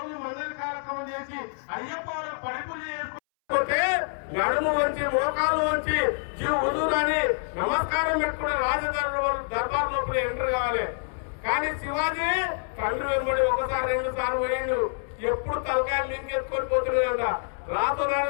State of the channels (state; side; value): silent; right; 60 dB below the other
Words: మండలి కార్యక్రమం చేసి అయ్యప్ప పడి పూజ చేసుకుంటే నడుము వంచి మోకాలు వంచి జీవ వదులని నమస్కారం పెట్టుకునే దర్బార్ లోపల ఎంటర్ కావాలి. కానీ శివాజీ తండ్రి వెంబడి 1 సారి 2 సార్లు పోయిండు. ఎప్పుడు తలకాయలు లింకెత్తుకొని పోతున్నాడంట. రాత్రుల